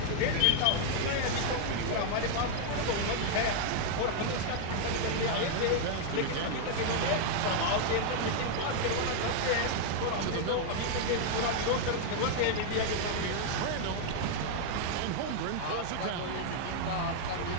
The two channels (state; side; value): different; both; correlation 0.00